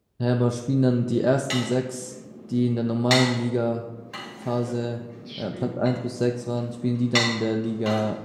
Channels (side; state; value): both; identical; correlation 1.00